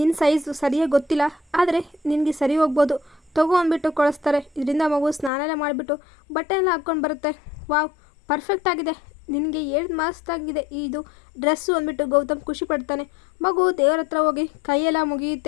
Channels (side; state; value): right; drops out; at 5.3 s